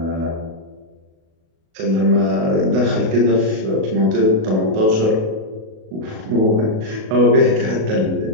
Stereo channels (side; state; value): left; late; 37 ms